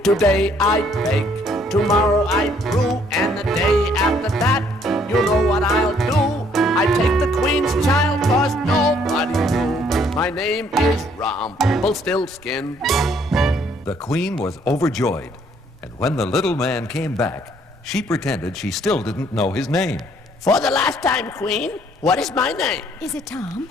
Today I bake, tomorrow I brew, and the day after that, you know what I'll do. I take the queen's child, 'cause nobody knew. My name is Rumpelstiltskin. The queen was overjoyed, and when the little man came back, she pretended she still didn't know his name. For the last time, queen, what is my name? Is it Tom?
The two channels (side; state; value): both; normal; correlation 0.64